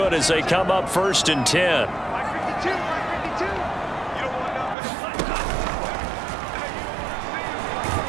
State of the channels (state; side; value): drops out; left; at 4.8 s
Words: as they come up 1st and 10.